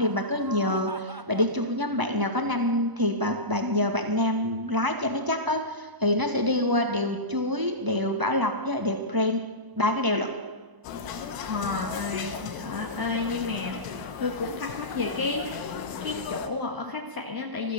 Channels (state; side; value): late; left; 1.0 ms